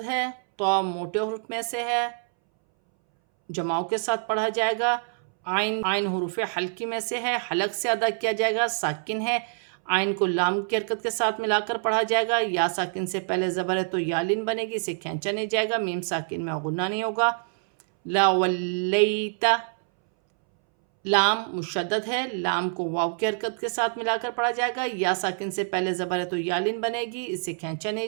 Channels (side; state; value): left; silent; 61 dB below the other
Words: ہے، تو موٹے حروف میں سے ہے، جماؤ کے ساتھ پڑھا جائے گا. عین حروف حلقی میں سے ہے، حلق سے ادا کیا جائے گا، ساکن ہے. عین کو لام کی حرکت کے ساتھ ملا کر پڑھا جائے گا، یا ساکن سے پہلے زبر ہے تو یا لین بنے گی، اسے کھینچا نہیں جائے گا، میم ساکن میں غنہ نہیں ہوگا۔ لا ولیتا، لام مشدد ہے، لام کو واو کی حرکت کے ساتھ ملا کر پڑھا جائے گا، یا ساکن سے پہلے زبر ہے تو یا لین بنے گی، اسے کھینچا نہیں